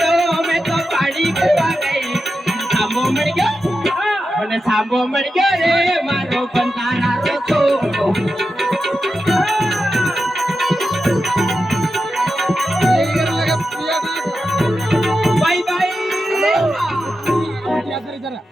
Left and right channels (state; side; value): normal; both; correlation 0.90